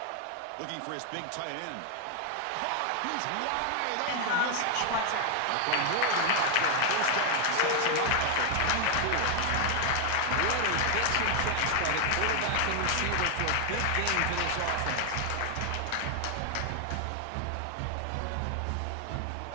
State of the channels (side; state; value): both; different; correlation 0.00